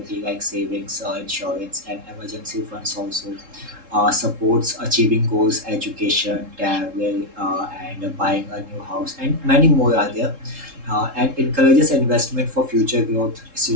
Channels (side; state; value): left; late; 3.7 ms